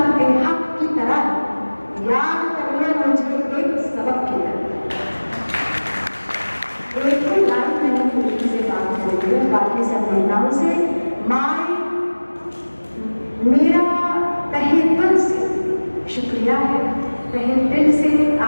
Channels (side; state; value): both; inverted; correlation -1.00